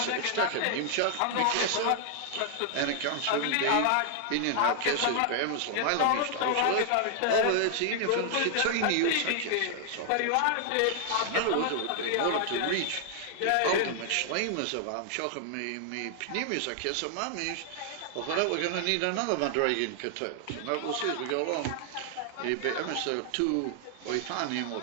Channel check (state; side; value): different; both; correlation 0.00